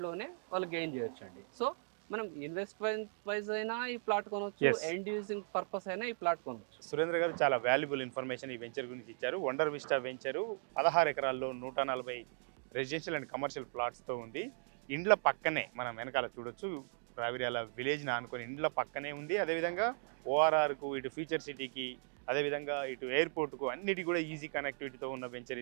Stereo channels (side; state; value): left; silent; digital silence